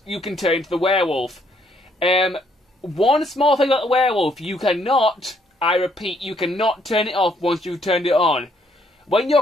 you can turn into the werewolf. One small thing about the werewolf, you cannot, I repeat, you cannot turn it off once you've turned it on. When your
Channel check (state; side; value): normal; both; correlation 0.69